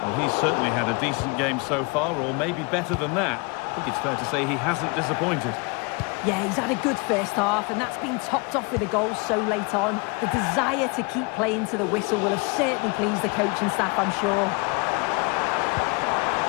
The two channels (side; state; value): right; quieter; 30.1 dB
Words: Well, he's certainly had a decent game so far, or maybe better than that. I think it's fair to say he hasn't disappointed. Yeah, he's had a good first half, and that's been topped off with a goal so late on. The desire to keep playing to the whistle will have certainly pleased the coaching staff, I'm sure.